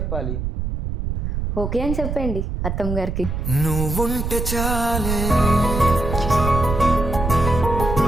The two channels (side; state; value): right; noise; rumble, 3 dB below the sound